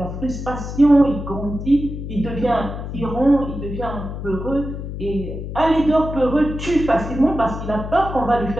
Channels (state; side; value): noise; left; hum, 7 dB below the sound